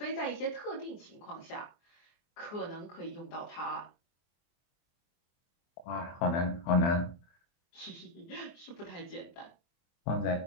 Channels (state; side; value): late; right; 24 ms